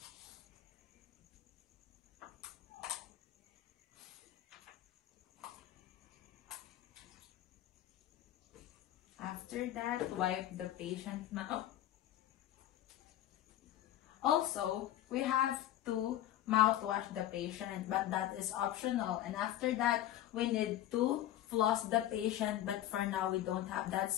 After that, wipe the patient's mouth. Also, we have to mouthwash the patient, but that is optional. And after that, we need to floss the patient, but for now, we don't have that,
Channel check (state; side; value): quieter; right; 13.0 dB